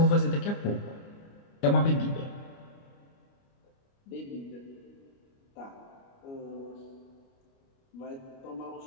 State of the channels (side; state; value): right; late; 29 ms